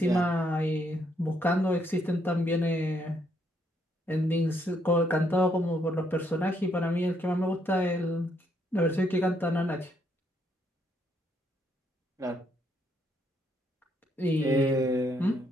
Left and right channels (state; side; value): normal; both; correlation 0.73